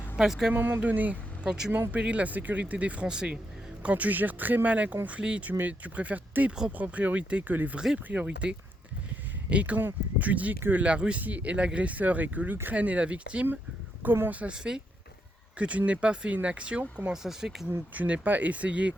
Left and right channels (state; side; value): normal; both; correlation 0.79